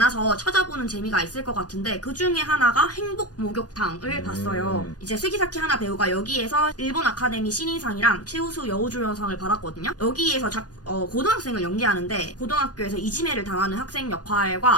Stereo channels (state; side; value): late; right; 0.68 ms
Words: 찾아보는 재미가 있을 것 같은데 그 중에 하나가 행복 목욕탕을 봤어요. 이제 스기사키 하나 배우가 여기에서 일본 아카데미 신인상이랑 최우수 여우조연상을 받았거든요. 여기에서 고등학생을 연기하는데 고등학교에서 이지매를 당하는 학생